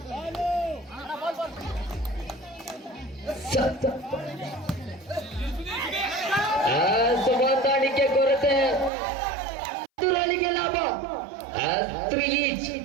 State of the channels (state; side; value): drops out; left; at 8.9 s